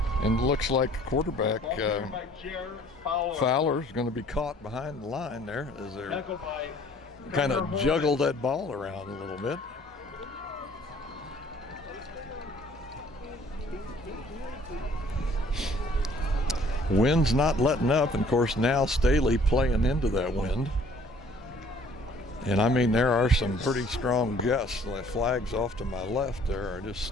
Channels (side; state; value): both; normal; correlation 0.56